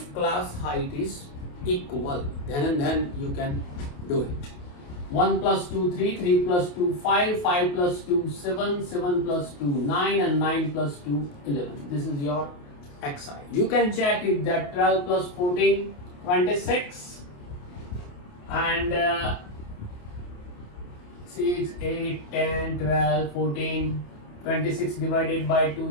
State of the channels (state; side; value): late; right; 28 ms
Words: class height is equal, then you can do it. 1 plus 2, 3, 3 plus 2, 5, 5 plus 2, 7, 7 plus 2, 9 and 9 plus 2, 11. This is your xi. You can check it that 12 plus 14, 26 and 6, 8, 10, 12, 14, 26 divided by 2,